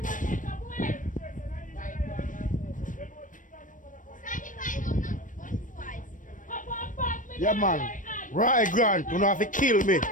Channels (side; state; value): right; late; 0.38 ms